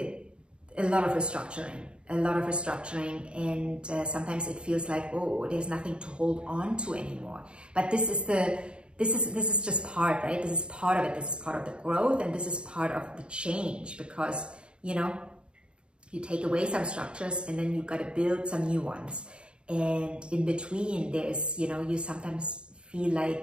lot of restructuring, and sometimes it feels like, oh, there's nothing to hold on to anymore. But this is just part, right? This is part of it. This is part of the growth, and this is part of the change, because, you know, you take away some structures and then you've got to build some new ones. And in between, there's, you know, you sometimes feel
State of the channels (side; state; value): left; late; 0.053 ms